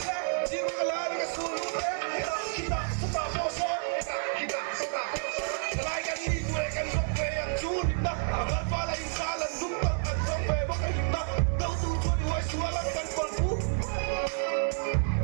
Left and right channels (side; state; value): left; silent; 55 dB below the other